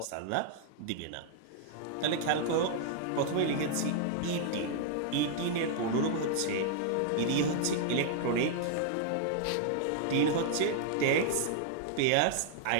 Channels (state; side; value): different; both; correlation -0.01